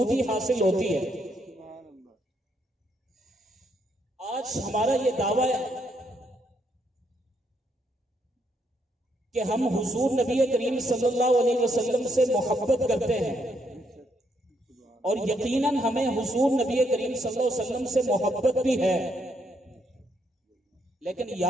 حاصل ہوتی ہے۔ آج ہمارا یہ دعویٰ ہے کہ ہم حضور نبی کریم صلی اللہ علیہ وسلم سے محبت کرتے ہیں، اور یقیناً ہمیں حضور نبی کریم صلی اللہ علیہ وسلم سے محبت بھی ہے، لیکن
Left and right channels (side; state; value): both; normal; correlation 0.75